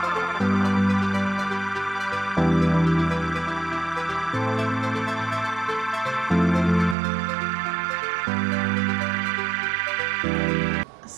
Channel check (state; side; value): drops out; left; at 7.0 s